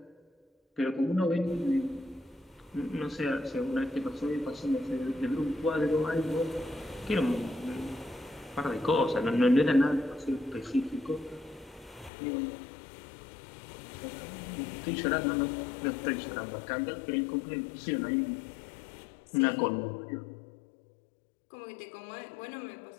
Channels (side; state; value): right; drops out; at 12.1 s